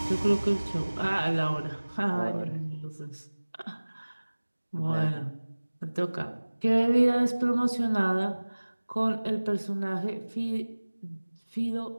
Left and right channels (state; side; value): inverted; both; correlation -1.00